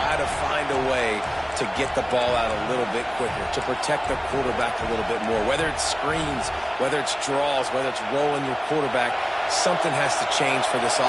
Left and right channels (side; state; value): both; identical; correlation 1.00